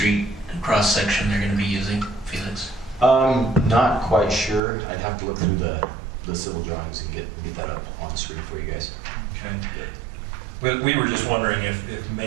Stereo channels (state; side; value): drops out; left; at 4.6 s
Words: cross section they're going to be using, Felix? Not quite sure. I'd have to look through the civil drawings and get that up on the screen for you guys. Okay. We were just wondering if